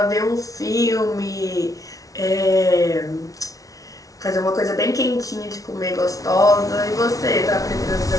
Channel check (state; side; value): late; right; 0.17 ms